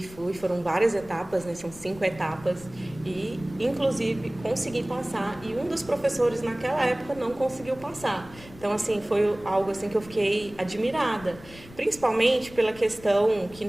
foram várias etapas, né, são 5 etapas. E inclusive consegui passar. E um dos professores naquela época não conseguiu passar. Então assim, foi algo assim que eu fiquei admirada. Principalmente pela questão que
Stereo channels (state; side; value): noise; left; rumble, 19 dB below the sound